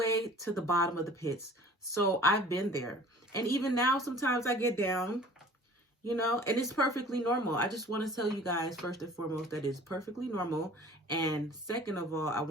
to the bottom of the pits. So I've been there. And even now, sometimes I get down, and it's perfectly normal. I just want to tell you guys, first and foremost, that it's perfectly normal. And second of all, I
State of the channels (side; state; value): both; normal; correlation 0.47